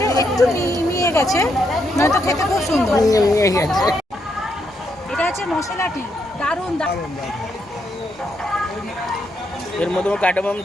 একটু মিয়ে গেছে, নয়তো খেতে খুব সুন্দর। এটা হচ্ছে মশলাটি, দারুণ। এর মধ্যে কার্ডামাম,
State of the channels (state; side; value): normal; both; correlation 0.78